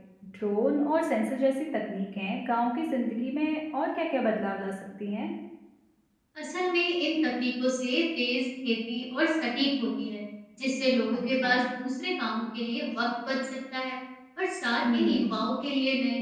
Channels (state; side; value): identical; both; correlation 1.00